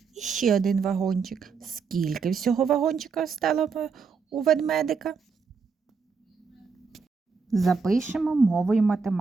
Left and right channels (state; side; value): quieter; left; 5.3 dB